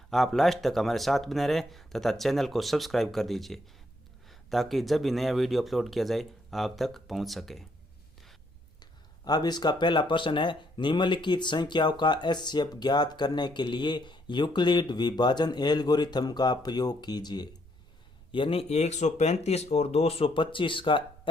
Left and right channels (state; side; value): noise; right; rumble, 24 dB below the sound